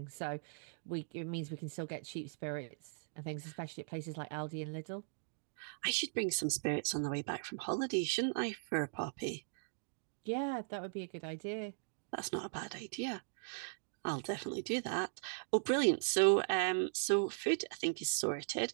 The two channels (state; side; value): silent; left; digital silence